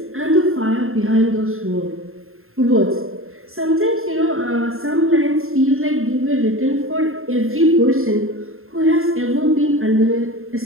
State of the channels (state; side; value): late; left; 0.61 ms